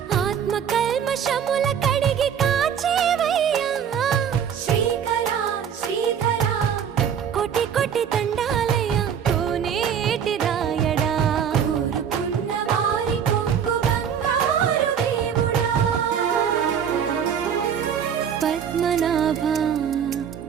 ఆత్మ కల్మషముల కడిగి కాచేవయ్యా శ్రీకరా శ్రీధరా కోటి కోటి దండాలయ్యా కోనేటి రాయడా కోరుకున్న వారి కొంగు బంగారు దేవుడా పద్మనాభ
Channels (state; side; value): quieter; left; 8.0 dB